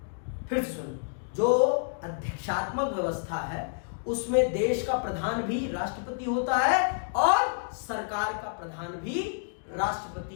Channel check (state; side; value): silent; right; digital silence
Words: फिर से सुनो, जो अध्यक्षात्मक व्यवस्था है उसमें देश का प्रधान भी राष्ट्रपति होता है और सरकार का प्रधान भी